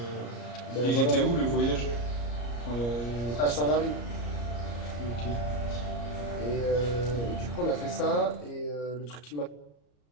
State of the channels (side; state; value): right; late; 34 ms